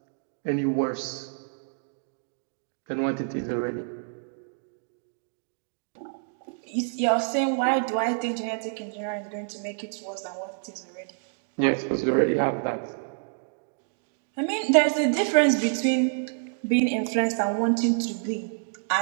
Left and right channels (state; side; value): silent; left; digital silence